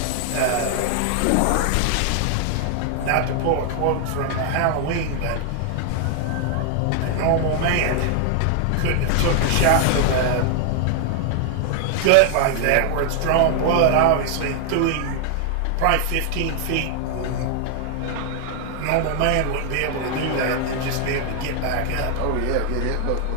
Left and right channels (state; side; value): different; both; correlation 0.00